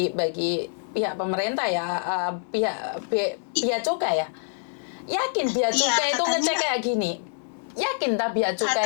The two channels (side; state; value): right; silent; digital silence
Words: pihak pemerintah ya, pihak cukai ya. Yakin pihak cukai itu ngecek kayak gini? Yakin tak pihak